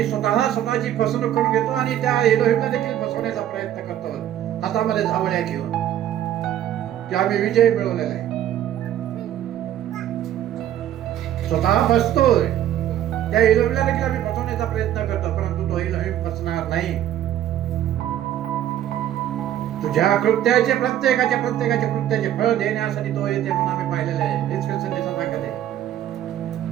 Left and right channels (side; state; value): left; quieter; 11.6 dB